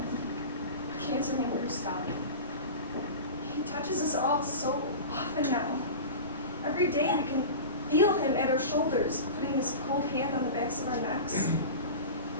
A cancer named Gustav. He touches us all so often now. Every day we can feel him at our shoulders, putting his cold hand on the backs of our necks,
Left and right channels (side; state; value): both; inverted; correlation -0.31